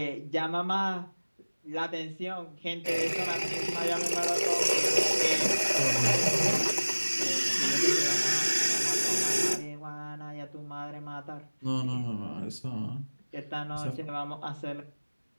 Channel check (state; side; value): inverted; both; correlation -1.00